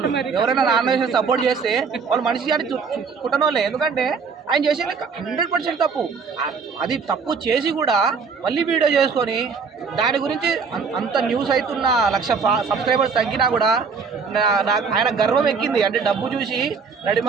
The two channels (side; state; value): left; quieter; 5.4 dB